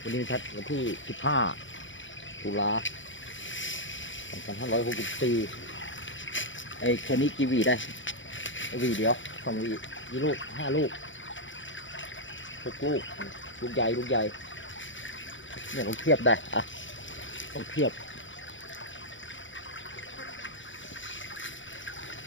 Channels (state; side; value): late; right; 0.56 ms